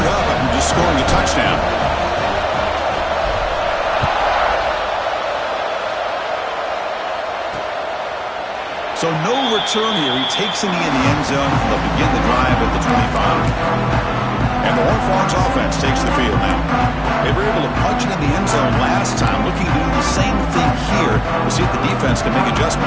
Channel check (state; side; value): identical; both; correlation 1.00